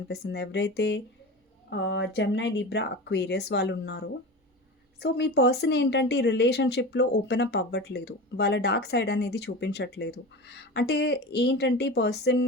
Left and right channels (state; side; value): normal; both; correlation 0.29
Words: ఎవరైతే జెమినీ, లిబ్రా, అక్వేరియస్ వాళ్ళున్నారో, సో, మీ పర్సన్ ఏంటంటే ఈ రిలేషన్‌షిప్‌లో ఓపెన్ అప్ అవ్వట్లేదు. వాళ్ళ డార్క్ సైడ్ అనేది చూపించట్లేదు. అంటే ఏంటంటే ఈ పర్సన్